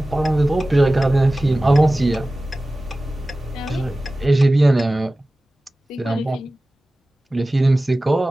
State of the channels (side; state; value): both; normal; correlation 0.97